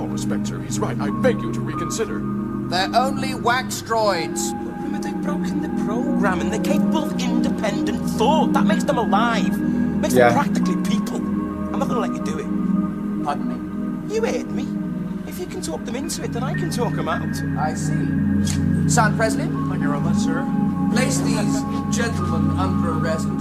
respect, sir, he's right. I beg you to reconsider. They're only wax droids. Rimmer, they've broken the program and they're capable of independent thought. That makes them alive. Makes them practically people. I'm not gonna let you do it. Pardon me? You heard me. If you can talk them into it, then I can talk them out. I see. Sergeant Presley? Thank you very much, sir. Place these gentlemen under arrest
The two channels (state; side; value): identical; both; correlation 1.00